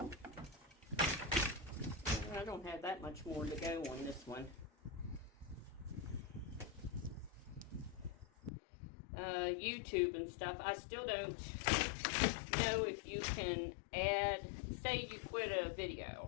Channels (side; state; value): right; drops out; at 8.5 s